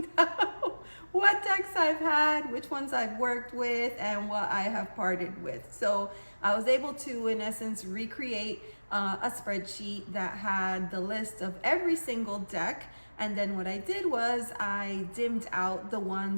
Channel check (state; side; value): inverted; both; correlation -1.00